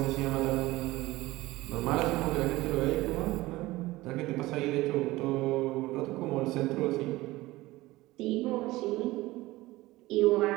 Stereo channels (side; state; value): left; quieter; 18.8 dB